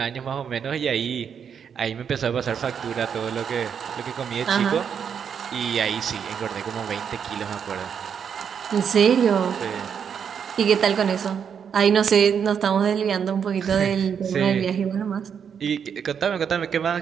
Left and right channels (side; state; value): left; quieter; 7.4 dB